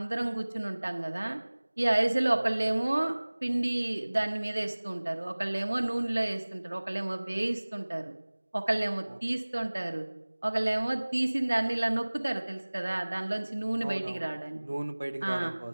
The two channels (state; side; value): inverted; both; correlation -1.00